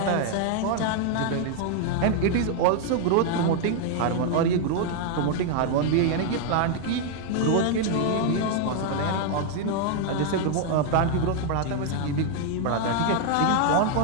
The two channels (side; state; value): both; different; correlation 0.00